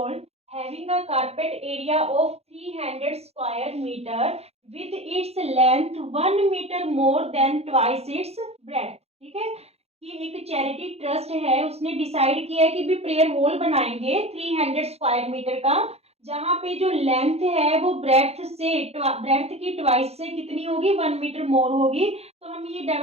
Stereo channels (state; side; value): late; left; 0.30 ms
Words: having a carpet area of 300 square meter with its length 1 meter more than twice its breadth. ठीक है, कि एक चैरिटी ट्रस्ट है, उसने डिसाइड किया है कि भी प्रेयर हॉल बनाएंगे 300 स्क्वायर मीटर का, जहां पे जो लेंथ है वो ब्रेथ की ट्वाइस से कितनी होगी, 1 मीटर मोर होगी। तो हमें ये